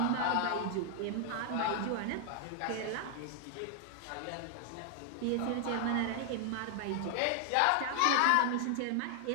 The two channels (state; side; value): different; both; correlation 0.00